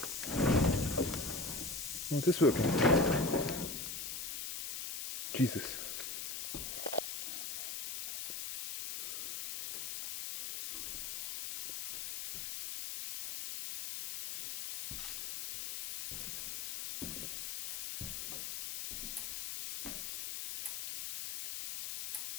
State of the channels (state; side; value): noise; left; hiss, 3 dB below the sound